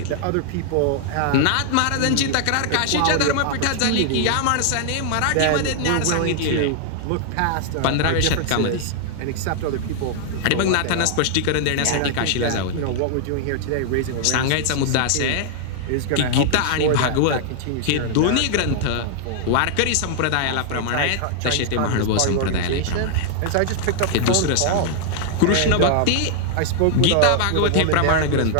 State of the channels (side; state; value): both; different; correlation -0.01